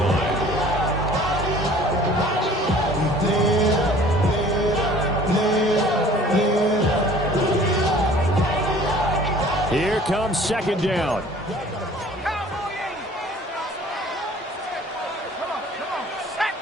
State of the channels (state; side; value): normal; both; correlation 0.50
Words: Here comes 2nd down.